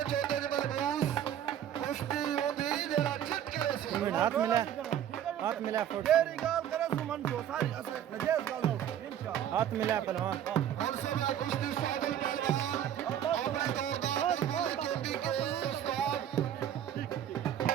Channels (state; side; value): quieter; left; 10.4 dB